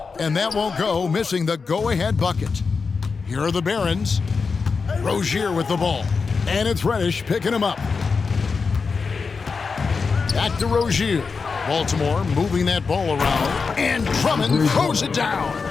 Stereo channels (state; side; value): quieter; right; 4.9 dB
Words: And that won't go, missing the go-ahead bucket. Here are the Barons. Rozier with the ball. And it's Reddish picking him up. Back to Rozier. Baltimore moving that ball around. And Drummond throws it down.